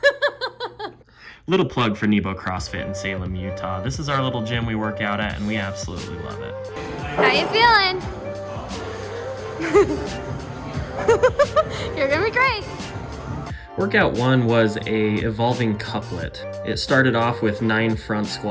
Little plug for Nebo CrossFit in Salem, Utah. This is our little gym we work out at, and we absolutely love it. How you feeling? You're gonna be great. Workout 1 was a evolving couplet. It started off with 9 front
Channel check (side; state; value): both; identical; correlation 1.00